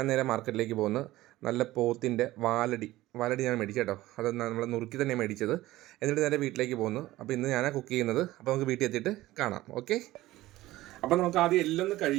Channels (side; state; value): left; quieter; 16.8 dB